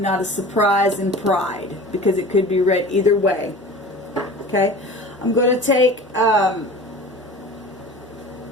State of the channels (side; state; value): both; normal; correlation 0.38